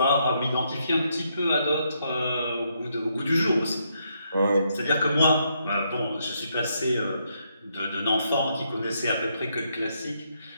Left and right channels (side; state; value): both; inverted; correlation -0.76